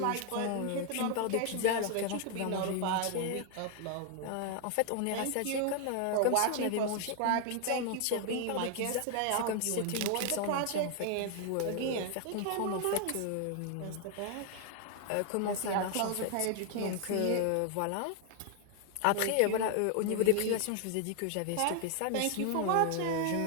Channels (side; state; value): both; different; correlation 0.00